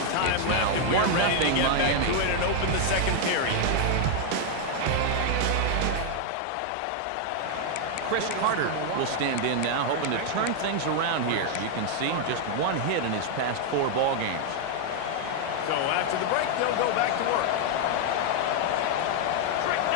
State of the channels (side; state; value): both; different; correlation 0.00